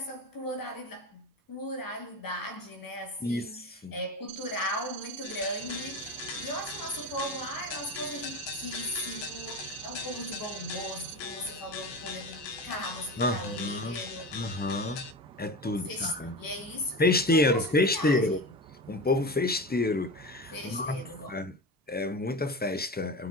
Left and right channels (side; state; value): both; normal; correlation 0.27